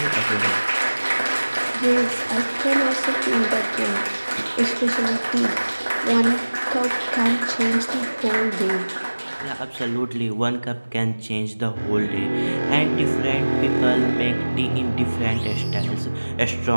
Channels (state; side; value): inverted; both; correlation -1.00